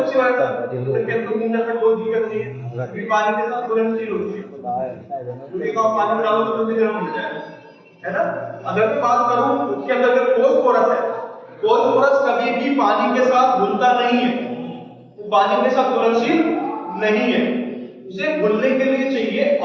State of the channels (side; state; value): both; identical; correlation 1.00